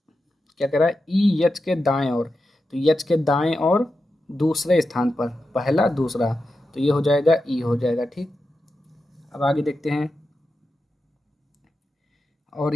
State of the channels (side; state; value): both; normal; correlation 0.90